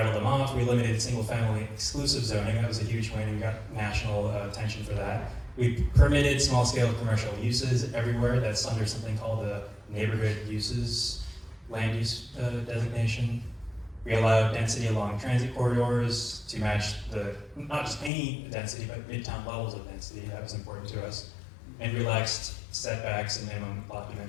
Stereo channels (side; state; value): right; drops out; at 18.1 s